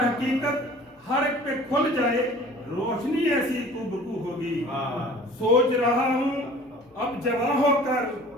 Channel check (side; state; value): both; normal; correlation 0.46